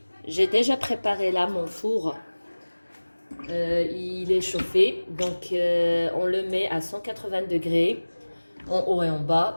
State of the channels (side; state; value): both; inverted; correlation -1.00